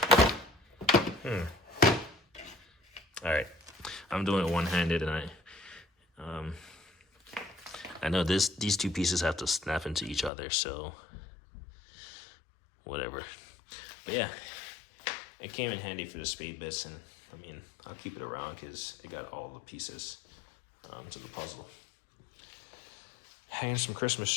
Alright, I'm doing it one-handed, and I know these two pieces have to snap into each other, so whatever. But yeah, it came in handy for the spade bits, and I mean, I'll keep it around because it got all the pieces to the puzzle. Hanging some Christmas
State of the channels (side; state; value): right; drops out; at 10.3 s